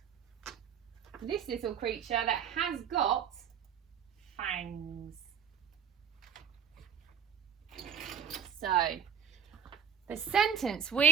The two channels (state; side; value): quieter; left; 7.9 dB